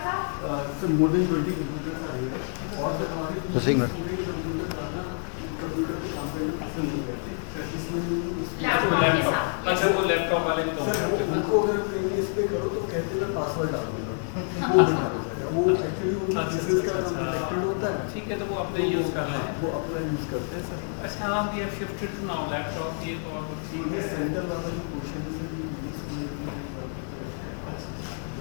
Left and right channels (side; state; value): right; silent; 58 dB below the other